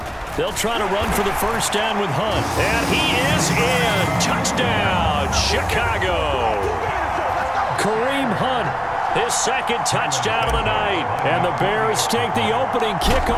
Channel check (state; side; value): identical; both; correlation 1.00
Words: They'll try to run for the first down with Hunt. And he is in. Touchdown, Chicago. Kareem Hunt, His 2nd touchdown of the night. and the Bears take the opening